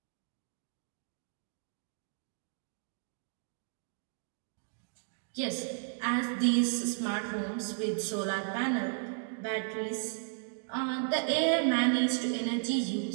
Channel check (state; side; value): silent; left; digital silence